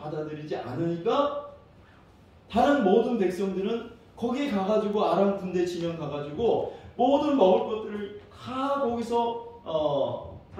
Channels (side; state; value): both; identical; correlation 1.00